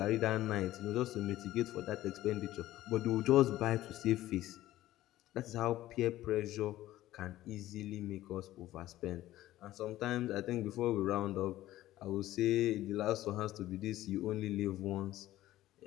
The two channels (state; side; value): quieter; right; 15.0 dB